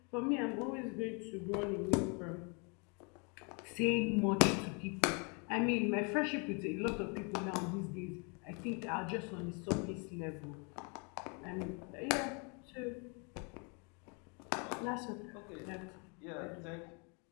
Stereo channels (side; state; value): right; quieter; 34.3 dB